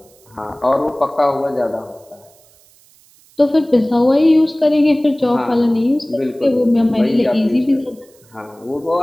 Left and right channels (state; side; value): noise; right; hiss, 30 dB below the sound